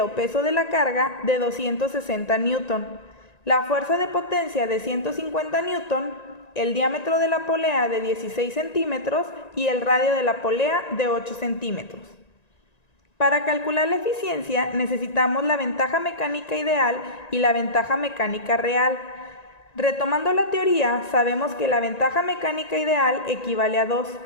o peso de la carga de 260 Newton, la fuerza de potencia de 150 Newton, el diámetro de la polea de 16 centímetros y el radio de la polea de 8 centímetros. Para calcular la eficiencia necesitamos la ventaja mecánica ideal y la ventaja mecánica real. Retomando la teoría, sabemos que la ventaja mecánica ideal equivale a 2,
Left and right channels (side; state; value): right; late; 1.9 ms